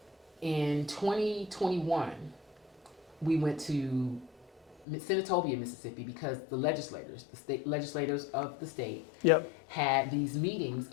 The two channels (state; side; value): drops out; right; at 4.9 s